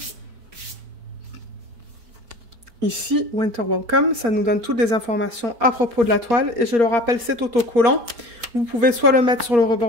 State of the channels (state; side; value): late; left; 4.3 ms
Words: Ici, Winter Welcome, ça nous donne toutes les informations à propos de la toile. Et je le rappelle, c'est autocollant. Vous pouvez soit le mettre sur le